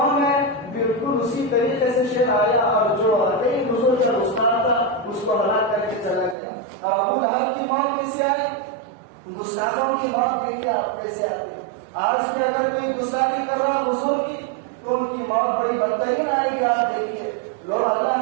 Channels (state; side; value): drops out; left; at 6.4 s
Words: ہے, بالکل اسی طریقے سے شیر آیا اور جو واقعی حضور کا گستاخ تھا اس کو ہلاک کر کے چلا گیا. ابو لہب کی موت کیسے آئی؟ گستاخوں کی موت دیکھیے آپ کیسے آتی ہے. آج بھی اگر کوئی گستاخی کر رہا حضور کی تو ان کی موت بڑی بدترین آئے گی. آپ دیکھیے لوگ